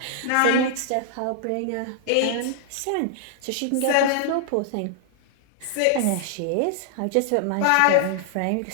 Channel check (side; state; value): both; different; correlation -0.01